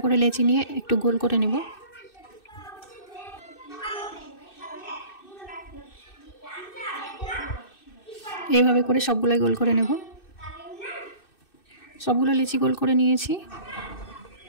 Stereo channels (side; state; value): right; late; 2.6 ms